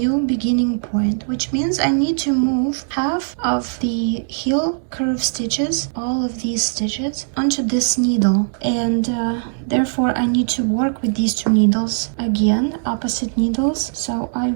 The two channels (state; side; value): silent; left; digital silence